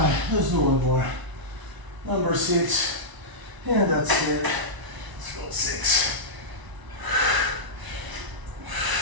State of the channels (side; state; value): left; late; 1.0 ms